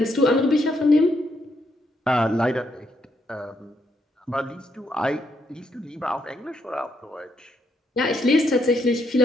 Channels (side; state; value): both; normal; correlation 0.76